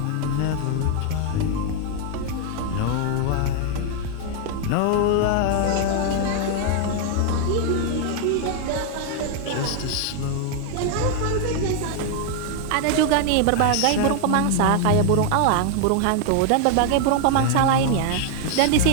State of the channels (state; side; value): different; both; correlation 0.00